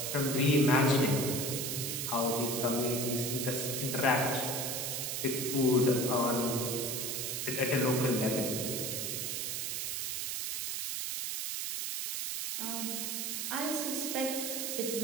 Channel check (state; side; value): noise; right; hiss, 2 dB below the sound